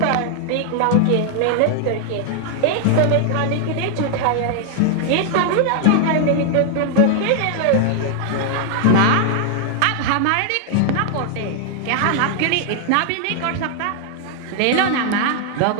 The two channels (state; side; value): different; both; correlation 0.00